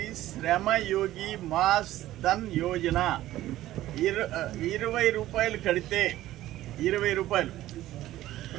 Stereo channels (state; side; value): quieter; left; 14.8 dB